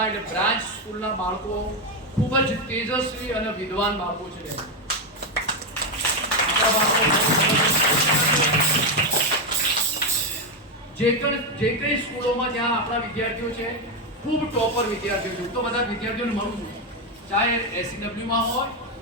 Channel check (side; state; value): both; normal; correlation 0.06